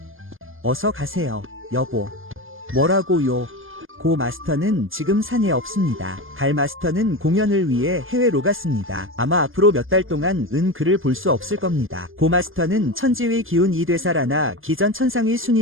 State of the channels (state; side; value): late; left; 0.59 ms